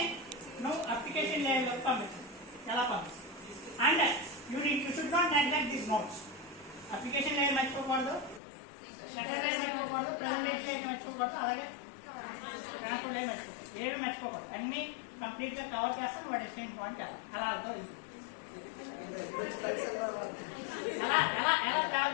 నువ్వు అప్లికేషన్ లేయర్ లోకి పంపించు. ఎలా పంపించు? And you should not neglect these notes. Application layer మర్చిపోకూడదు, సెషన్ లేయర్ మర్చిపోకూడదు, ప్రెజెంటేషన్ లేయర్ మర్చిపోకూడదు, అలాగే ట్రాన్స్పోర్ట్ లేయర్ మర్చిపోకూడదు. ఏవి మర్చిపోకూడదు, అన్ని కంప్లీట్ గా కవర్ చేస్తాను. వాడు ఎక్స్చేంజ్ పాయింట్ అలా అవుతుంది. ఎలా ఎలా ఎలా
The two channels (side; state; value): right; drops out; at 8.4 s